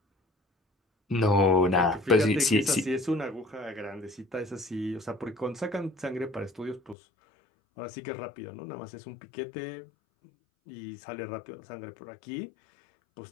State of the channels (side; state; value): right; drops out; at 7.0 s